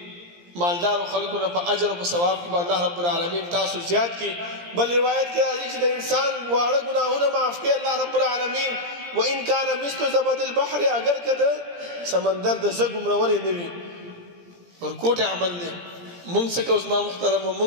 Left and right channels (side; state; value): left; late; 17 ms